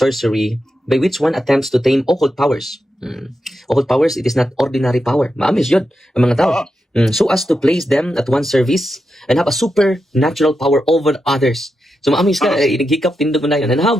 by which one attempts to tame occult powers. Occult powers, it is not ordinary power, maamis yun ang mga tao so as to place them at one service and have a supernatural power over others. So maamis ka hikap tindog mo na yun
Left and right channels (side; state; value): both; normal; correlation 0.87